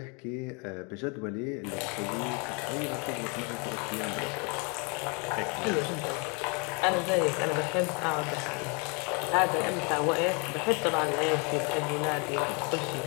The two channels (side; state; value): right; quieter; 33.1 dB